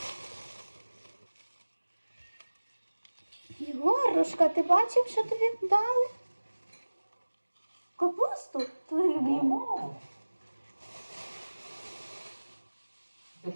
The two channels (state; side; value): inverted; both; correlation -1.00